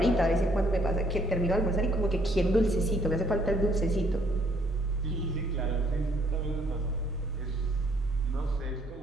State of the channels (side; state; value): both; normal; correlation 0.67